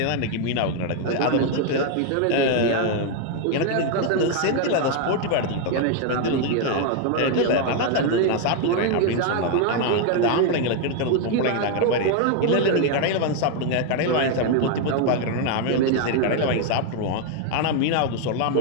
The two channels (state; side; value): different; both; correlation 0.01